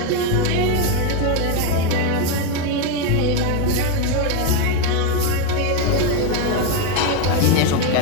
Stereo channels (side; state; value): both; different; correlation 0.02